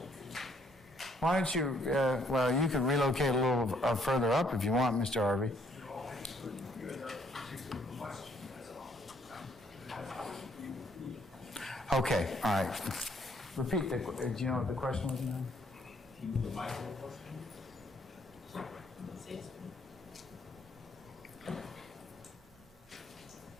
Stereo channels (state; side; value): normal; both; correlation 0.67